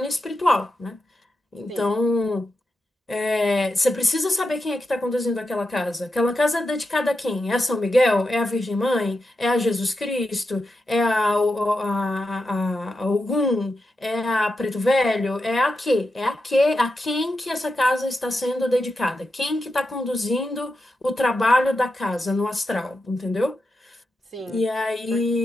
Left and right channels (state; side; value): normal; both; correlation 0.88